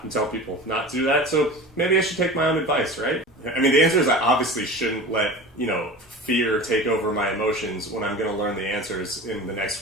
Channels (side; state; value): both; normal; correlation 0.34